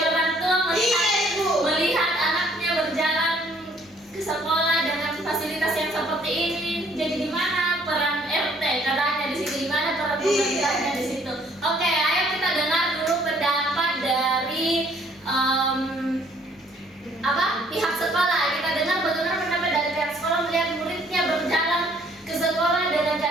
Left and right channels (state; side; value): normal; both; correlation 0.62